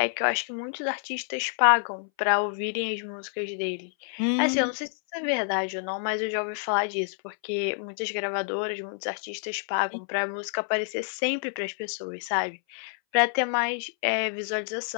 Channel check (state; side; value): silent; right; 59 dB below the other